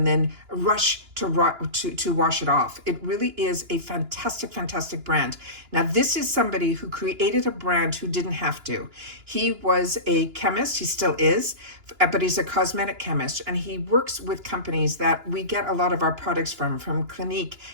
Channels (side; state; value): left; late; 2.9 ms